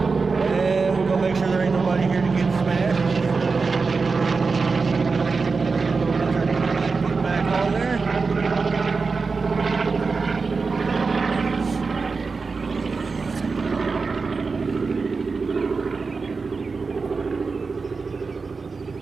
we're gonna make sure there ain't nobody here to get smashed. On there.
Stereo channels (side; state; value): left; quieter; 4.5 dB